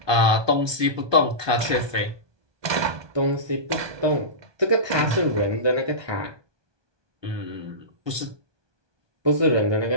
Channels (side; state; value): left; late; 1.2 ms